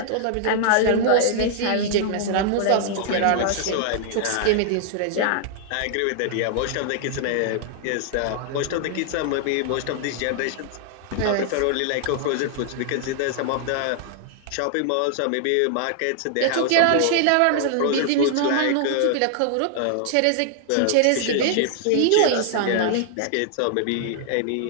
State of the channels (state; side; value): different; both; correlation -0.01